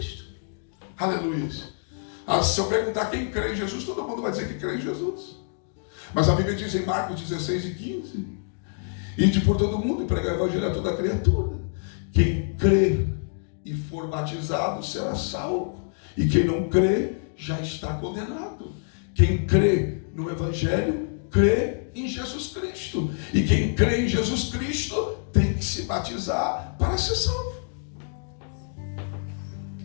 Aleluia. Se eu perguntar quem crê em Jesus, todo mundo vai dizer que crê em Jesus. Mas a Bíblia diz em Marcos 16 e 15: ide por todo mundo e pregar o evangelho a toda criatura. Quem crer e for batizado será salvo. E quem não crê já está condenado. Quem crê no evangelho, crê em Jesus Cristo. E quem crê em Jesus Cristo tem que se batizar para ser salvo.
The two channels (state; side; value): silent; right; digital silence